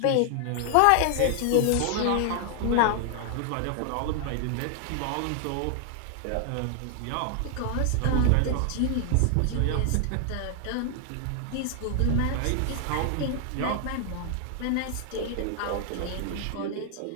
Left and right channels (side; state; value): both; different; correlation 0.00